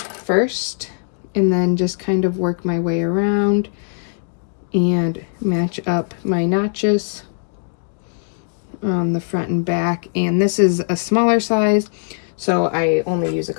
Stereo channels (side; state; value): right; silent; digital silence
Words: and then just kind of work my way around and match up my notches on the front and back. And this is a smaller size, so I only use a